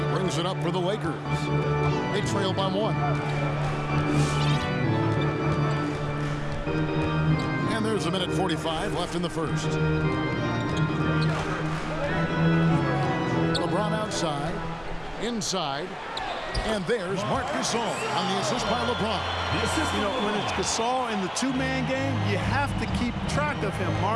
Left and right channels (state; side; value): identical; both; correlation 1.00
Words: brings it up for the Lakers. They trail by 1. And there's a minute 45 left in the first. LeBron outside. Inside. And there's Marc Gasol on the assist by LeBron. You know, when it's Gasol in the two-man game, you have to keep track of him.